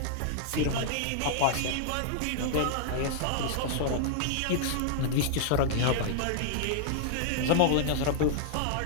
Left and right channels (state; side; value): different; both; correlation -0.01